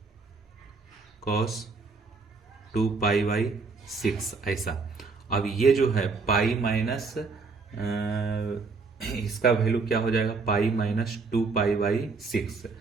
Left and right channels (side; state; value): left; quieter; 4.3 dB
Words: कॉस 2 पाई/6, ऐसा। अब ये जो है पाई माइनस इसका वैल्यू क्या हो जाएगा? पाई माइनस 2 पाई/6।